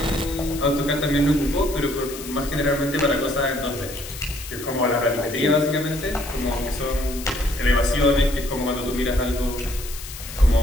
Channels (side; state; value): left; noise; hiss, 12 dB below the sound